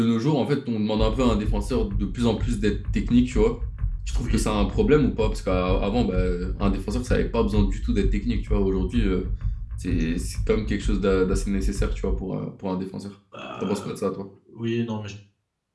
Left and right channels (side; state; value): both; identical; correlation 1.00